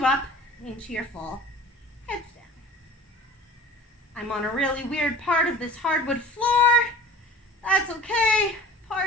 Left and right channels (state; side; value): normal; both; correlation 0.42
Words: up into your full headstand. I'm on a really weird part of this hardwood floor. That's okay.